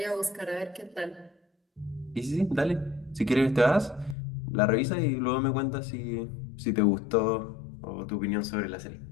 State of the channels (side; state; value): right; drops out; at 4.2 s